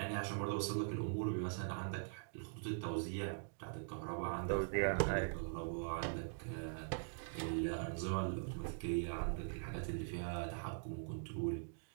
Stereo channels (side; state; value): left; silent; digital silence